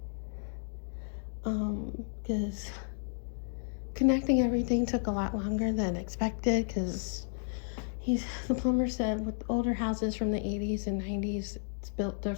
Because connecting everything took a lot longer than expected, because the plumber said with older houses from the 80s and 90s, it's built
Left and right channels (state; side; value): silent; right; digital silence